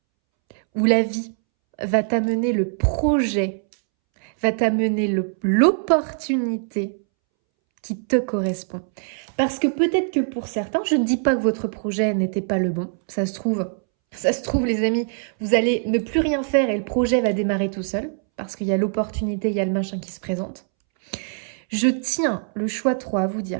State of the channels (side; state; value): left; silent; 64 dB below the other